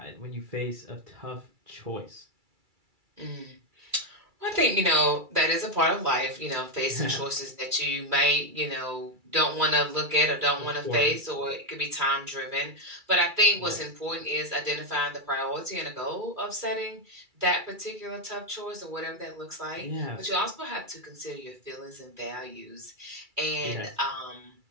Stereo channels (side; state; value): left; late; 2.3 ms